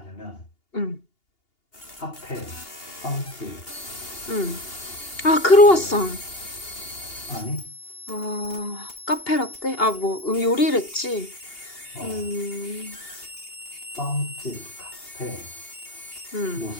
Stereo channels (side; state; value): right; late; 2.8 ms